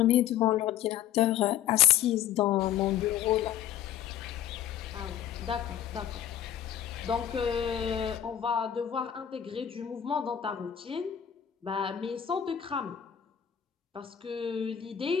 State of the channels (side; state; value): right; quieter; 10.2 dB